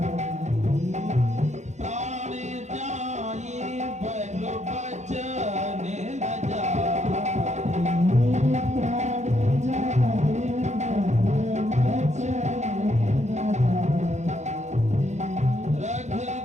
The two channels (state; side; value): late; left; 0.33 ms